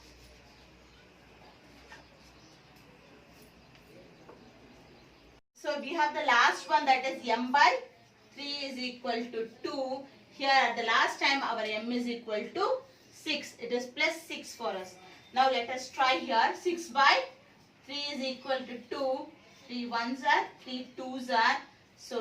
So we have the last one, that is m by 3 is equal to 2. Here at the last time our m is equal to 6. It is plus 6 for us. Now let us try here. 6 by 3 is equal to 2. 3 ones are, 3 twos are.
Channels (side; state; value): both; identical; correlation 1.00